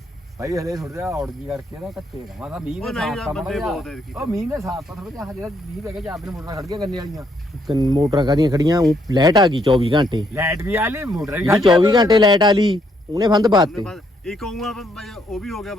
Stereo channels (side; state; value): both; normal; correlation 0.72